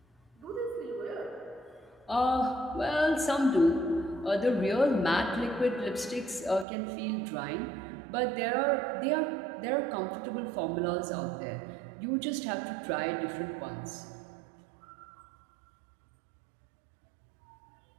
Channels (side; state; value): left; drops out; at 6.7 s